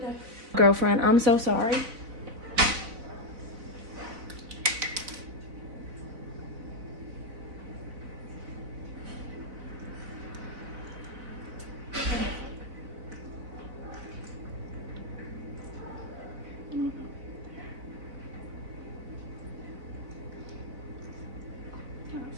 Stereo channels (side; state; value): left; late; 3.9 ms